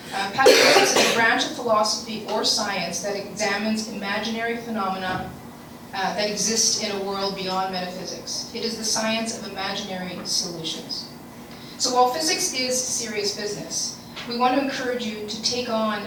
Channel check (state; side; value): identical; both; correlation 1.00